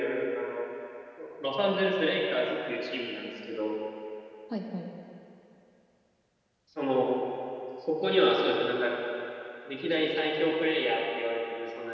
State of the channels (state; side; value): identical; both; correlation 1.00